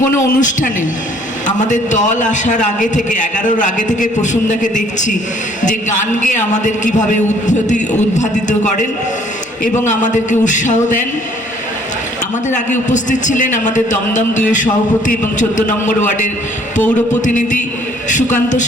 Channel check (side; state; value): both; normal; correlation 0.60